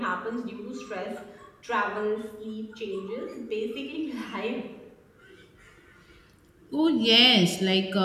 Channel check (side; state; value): both; identical; correlation 1.00